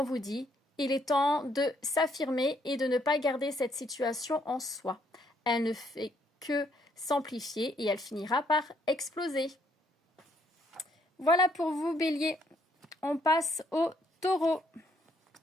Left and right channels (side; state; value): both; normal; correlation 0.70